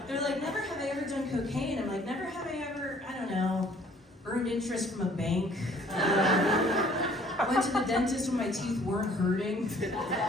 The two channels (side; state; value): both; normal; correlation 0.57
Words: They're like, never have I ever done cocaine. I'm like, never have I ever, I don't know, earned interest from a bank. Went to the dentist when my teeth weren't hurting.